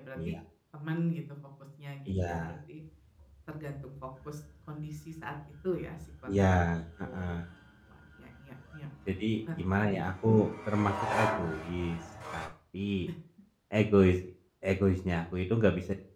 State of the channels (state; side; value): identical; both; correlation 1.00